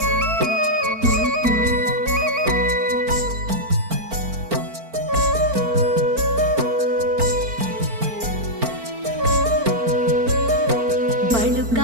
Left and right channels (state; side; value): late; left; 4.4 ms